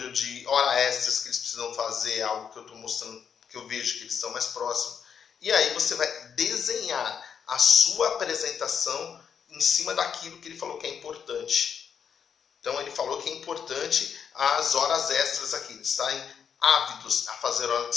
de horas extras que eles precisam fazer, algo que eu estou mostrando, que eu vejo que eles estão mais próximos. E aí você vai desenhar a sua apresentação em cima daquilo que ele falou que é importante. Então ele falou que é importante as horas extras aqui, eles estarem ávidos a fazer horas,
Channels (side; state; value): right; quieter; 7.3 dB